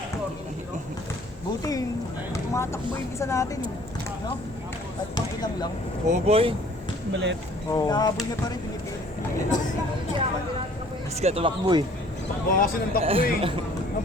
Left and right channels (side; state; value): both; normal; correlation 0.55